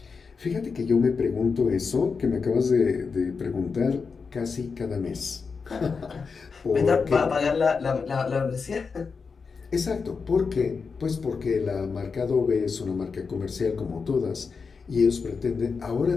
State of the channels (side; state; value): right; quieter; 5.1 dB